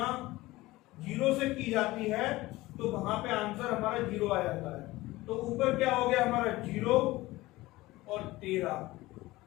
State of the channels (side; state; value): right; quieter; 19.0 dB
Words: 0 से की जाती है तो वहां पे आंसर हमारा 0 आ जाता है। तो ऊपर क्या हो गया हमारा 0 और 13,